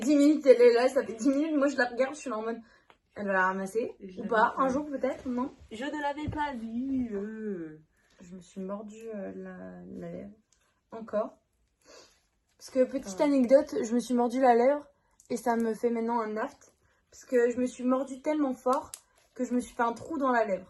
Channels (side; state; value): both; identical; correlation 1.00